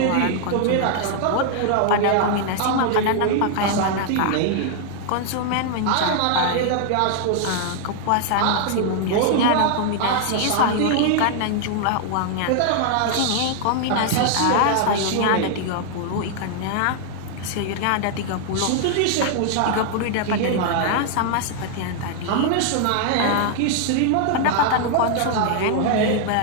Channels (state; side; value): different; both; correlation 0.00